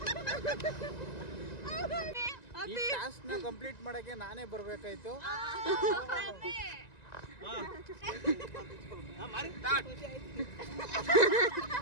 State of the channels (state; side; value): late; right; 1.9 ms